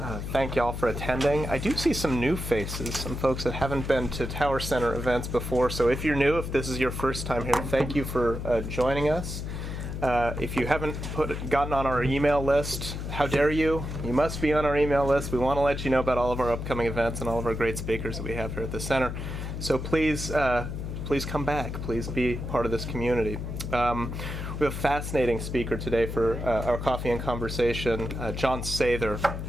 Thank y'all for attending. I do see some new faces, some folks that haven't been to Tower Center events before. So if you're new, if this is your first time here, thank you for joining us. If you haven't gotten on our email list, how dare you? You must be on our email list. We want to let you know about all of our upcoming events and all of our great speakers that we have here at the center. So please come back. Please be part of this community. We have a fascinating speaker today for our coffee and conversation, Jon Sather,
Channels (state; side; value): noise; left; hum, 5 dB below the sound